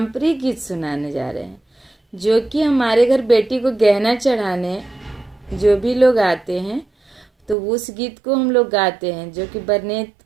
गीत सुनाने जा रहे हैं, जो कि हमारे घर बेटी को गहना चढ़ाने जो भी लोग आते हैं तो उस गीत को हम लोग गाते हैं, जो कि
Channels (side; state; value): left; drops out; at 7.6 s